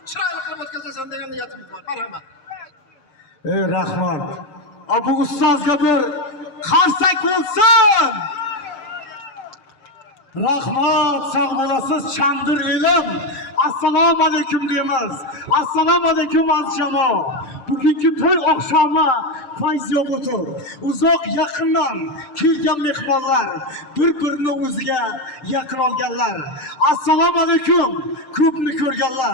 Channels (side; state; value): right; late; 7.6 ms